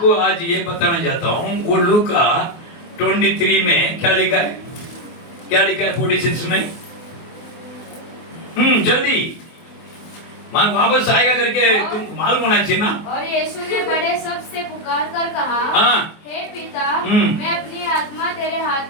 आज ये बताना चाहता हूँ, वो लूका 23 में क्या लिखा है, क्या लिखा है 46 में, जल्दी मान वापस आएगा करके तुम मालूम होना चाहिए ना। और यीशु ने बड़े शब्द से पुकार कर कहा, हे पिता, मैं अपनी आत्मा तेरे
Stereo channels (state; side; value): late; right; 24 ms